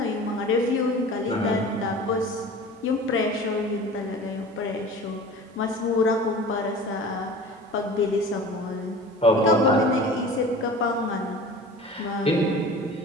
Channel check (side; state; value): both; normal; correlation 0.39